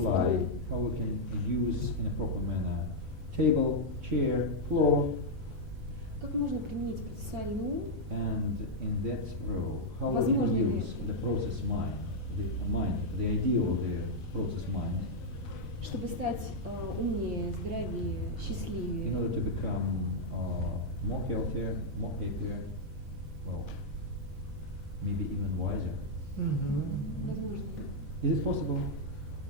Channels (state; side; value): normal; both; correlation -0.04